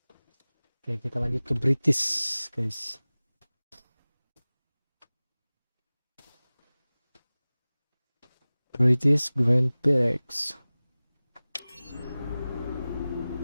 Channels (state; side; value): inverted; both; correlation -0.98